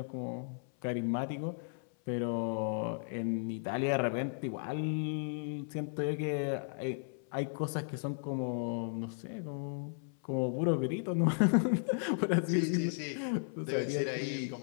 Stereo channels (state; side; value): silent; right; 54 dB below the other